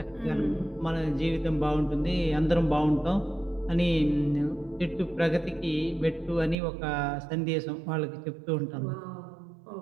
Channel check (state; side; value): drops out; left; at 6.6 s